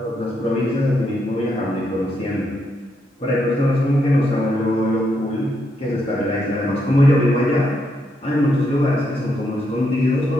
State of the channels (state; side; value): normal; both; correlation 0.79